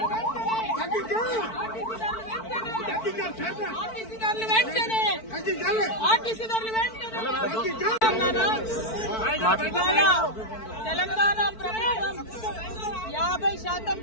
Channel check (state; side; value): late; right; 4.5 ms